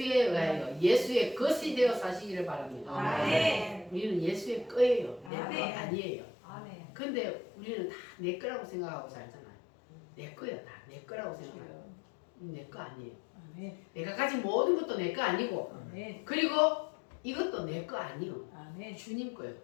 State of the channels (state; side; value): drops out; right; at 5.3 s